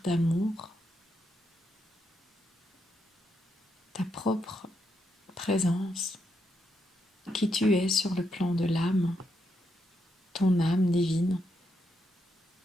d'amour, ta propre présence, qui tu es sur le plan de l'âme, ton âme divine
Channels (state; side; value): normal; both; correlation 0.81